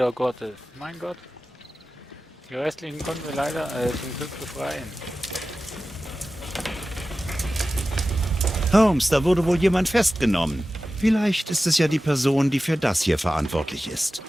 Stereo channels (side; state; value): both; normal; correlation 0.95